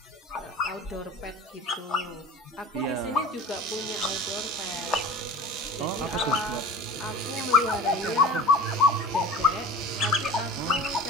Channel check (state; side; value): normal; both; correlation 0.38